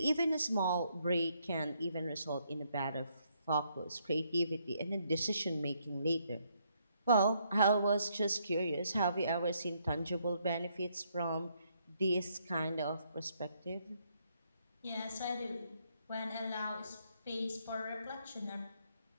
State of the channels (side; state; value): both; inverted; correlation -0.73